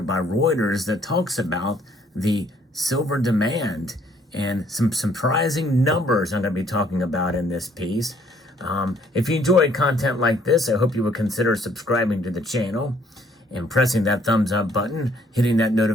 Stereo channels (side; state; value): both; normal; correlation 0.63